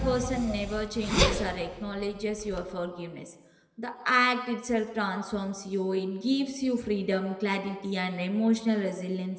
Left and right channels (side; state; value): both; identical; correlation 1.00